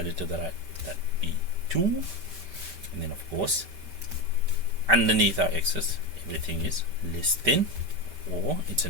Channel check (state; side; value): late; left; 5.2 ms